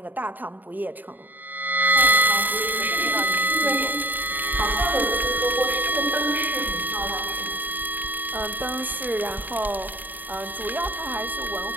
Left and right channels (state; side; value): late; left; 0.087 ms